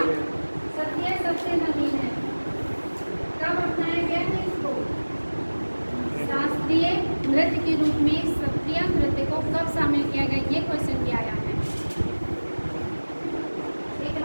सत्रिया सबसे नवीन है। कब अपनाया गया है इसको? शास्त्रीय नृत्य के रूप में सत्रिया नृत्य को कब शामिल किया गया? ये क्वेश्चन भी आया है। एक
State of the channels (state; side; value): inverted; both; correlation -1.00